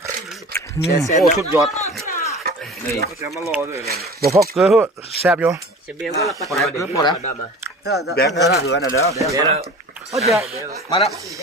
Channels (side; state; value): both; normal; correlation 0.39